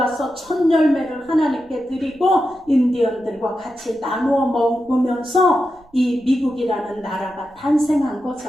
첫 열매를 하나님께 드리고 인디언들과 같이 나누어 먹으면서 이 미국이라는 나라가 탄생한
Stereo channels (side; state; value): right; noise; rumble, 29 dB below the sound